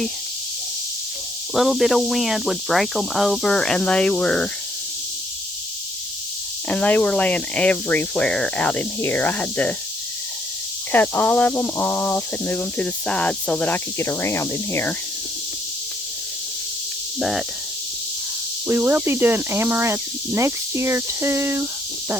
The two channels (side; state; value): both; normal; correlation 0.70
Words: little bit of wind would break them over, and they were laying everywhere out in here. I had to cut all of them off and move them to the side so that I could get around in here. But we will be doing amaranth next year too,